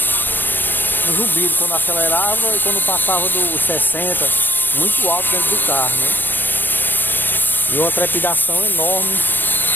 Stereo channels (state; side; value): late; right; 0.093 ms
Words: Um zumbido quando acelerava e quando passava dos 60, muito alto dentro do carro, né? E uma trepidação enorme